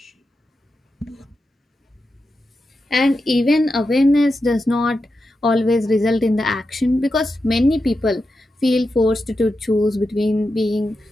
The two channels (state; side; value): normal; both; correlation 0.89